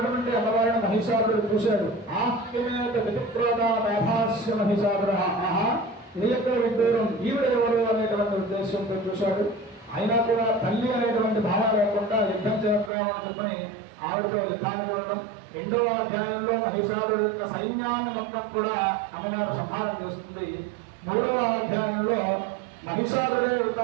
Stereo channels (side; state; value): left; drops out; at 12.9 s